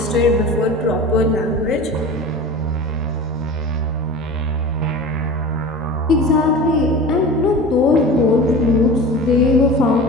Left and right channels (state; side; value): normal; both; correlation 0.35